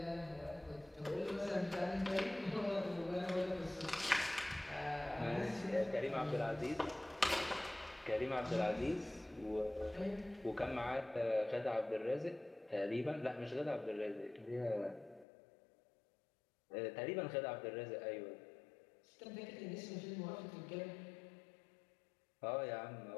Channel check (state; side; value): drops out; right; at 15.2 s